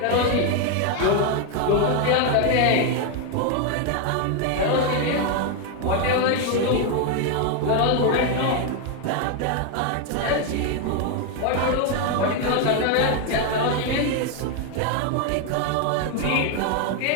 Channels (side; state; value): both; different; correlation 0.01